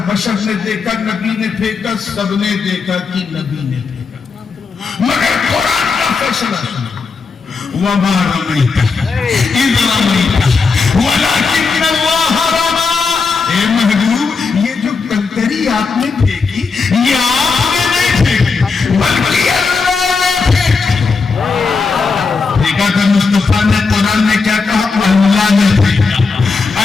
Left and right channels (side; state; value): right; quieter; 4.7 dB